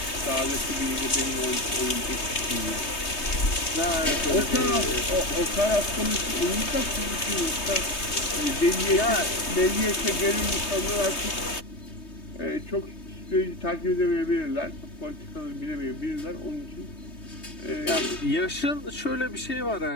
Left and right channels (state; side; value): late; right; 3.2 ms